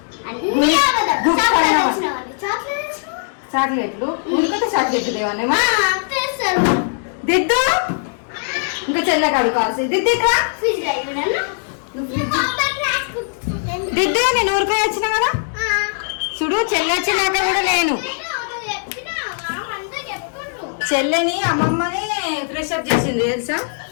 చాక్లెట్లు ఉడికితే చాక్లెట్లు దేవనేమా దిద్దు ఇంకా చెల్ల కడుకోవాల్సి దిద్దు ఇక్కడ దిద్దు నేను ఊరికే వచ్చిన కదా చూడు. చెల్లి వచ్చినాక కూడా నేను చెల్లెని అమ్మమ్మని ఫ్రెష్ అప్ చేసింది తెలుసా.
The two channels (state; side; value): silent; right; digital silence